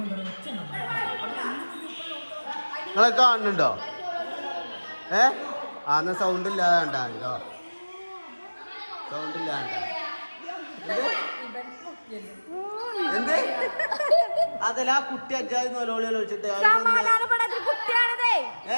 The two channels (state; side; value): inverted; both; correlation -1.00